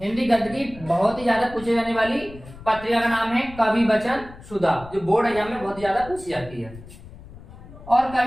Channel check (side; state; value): left; noise; rumble, 17 dB below the sound